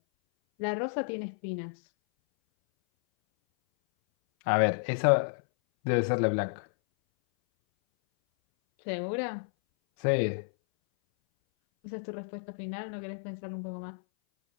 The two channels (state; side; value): silent; right; 57 dB below the other